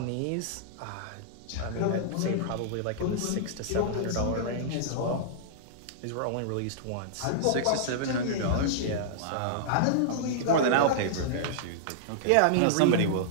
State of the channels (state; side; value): different; both; correlation -0.02